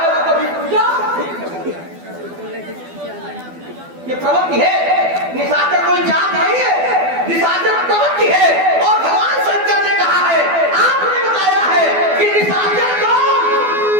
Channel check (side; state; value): left; late; 12 ms